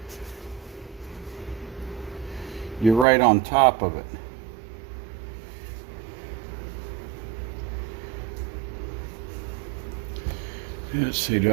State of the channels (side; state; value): left; drops out; at 3.1 s